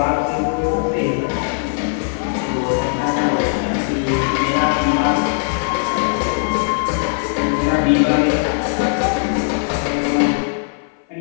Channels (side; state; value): right; silent; 58 dB below the other